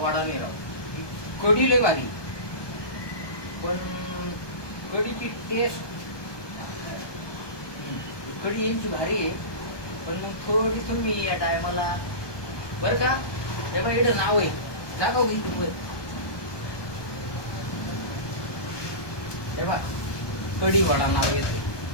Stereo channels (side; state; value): right; late; 1.2 ms